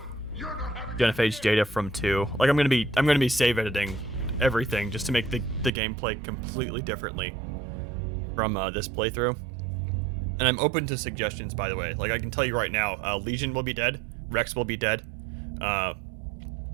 Genophage data from 2. Like I'm gonna be save editing everything just to make the gameplay completely differently from this playthrough. And I'm open to suggestions, by the way. Like I can tell you right now, Legion will be dead, Rex will be dead,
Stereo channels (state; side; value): drops out; left; at 5.7 s